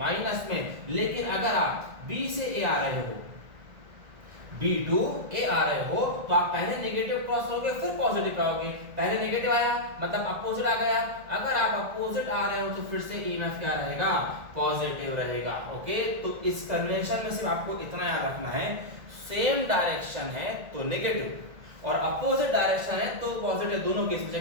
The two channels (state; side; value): late; left; 1.8 ms